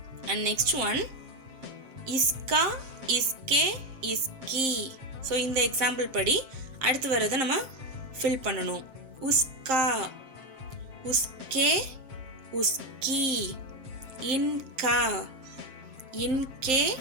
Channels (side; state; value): left; late; 7.6 ms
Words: and next one, इसका इसके इसकी. ஸோ இந்த எக்ஸாம்பிள் படி அடுத்து வர்றதை நம்ம ஃபில் பண்ணணும். உஸ்கா உஸ்கே உஸ்கி. இன்கா இன்கே